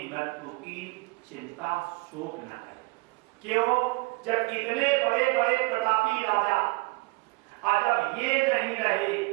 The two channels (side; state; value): left; quieter; 26.1 dB